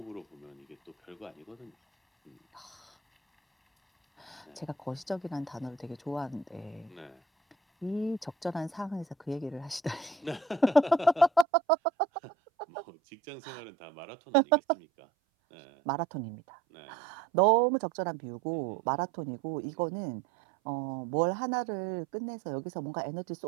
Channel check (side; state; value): left; drops out; at 11.5 s